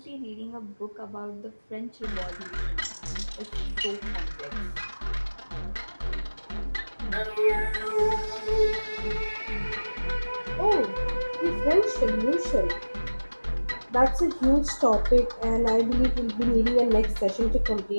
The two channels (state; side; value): inverted; both; correlation -1.00